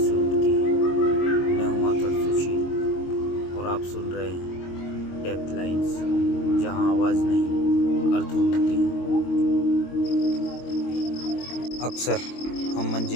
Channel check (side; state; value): right; late; 22 ms